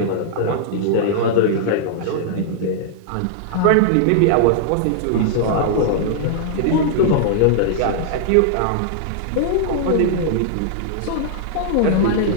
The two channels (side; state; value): both; different; correlation -0.01